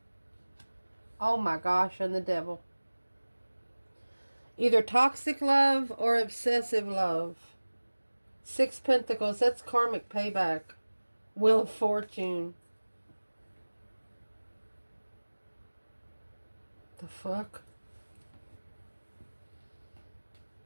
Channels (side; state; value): both; inverted; correlation -1.00